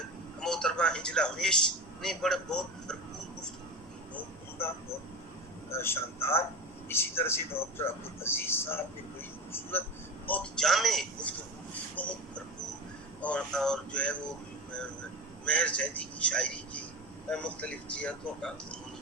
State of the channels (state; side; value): normal; both; correlation 0.27